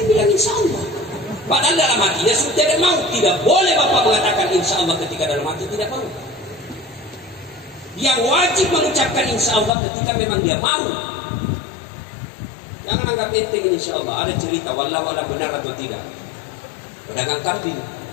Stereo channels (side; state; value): right; drops out; at 9.7 s